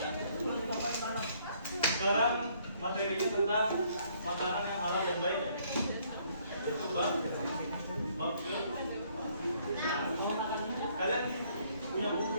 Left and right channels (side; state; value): both; inverted; correlation -0.65